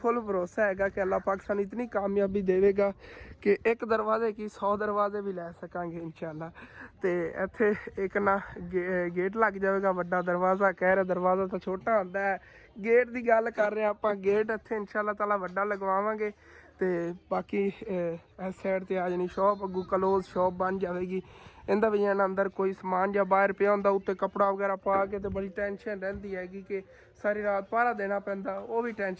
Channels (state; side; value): identical; both; correlation 1.00